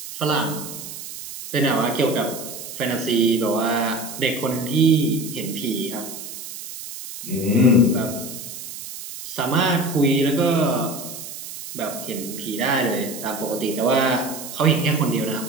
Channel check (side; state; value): right; noise; hiss, 11 dB below the sound